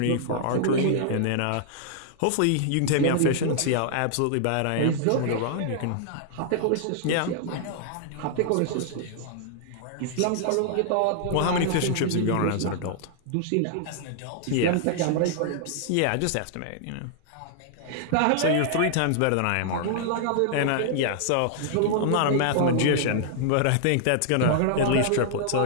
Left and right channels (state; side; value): different; both; correlation -0.01